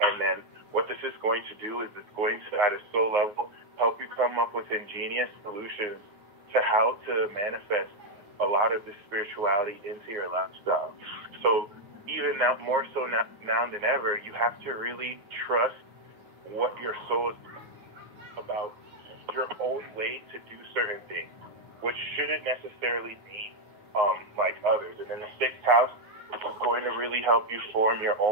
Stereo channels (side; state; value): left; late; 9.7 ms